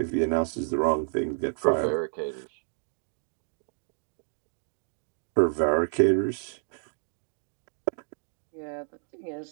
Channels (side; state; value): left; silent; digital silence